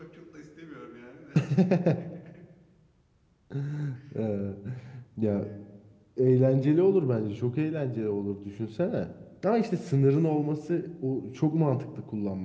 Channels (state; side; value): identical; both; correlation 1.00